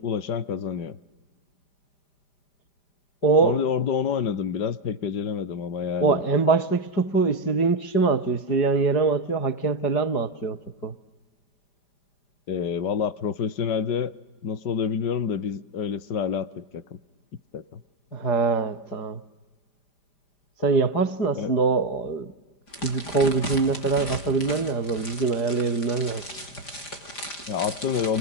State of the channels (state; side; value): late; right; 5.0 ms